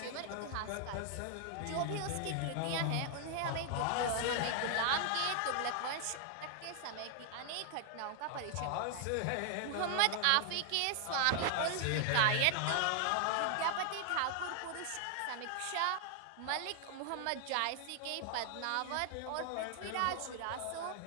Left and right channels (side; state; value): both; different; correlation 0.00